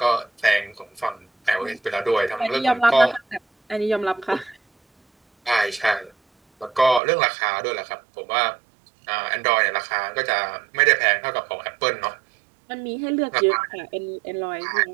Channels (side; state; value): left; drops out; at 7.0 s